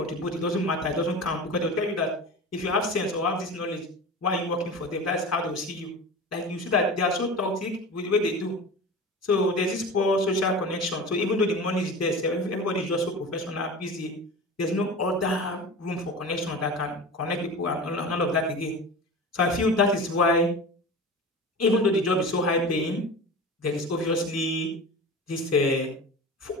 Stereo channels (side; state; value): both; normal; correlation 0.32